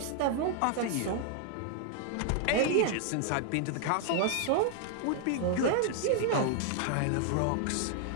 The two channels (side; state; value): both; different; correlation 0.00